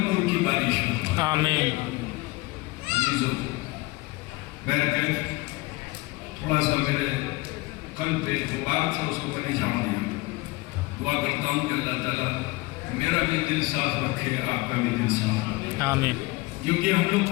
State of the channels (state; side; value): quieter; right; 22.4 dB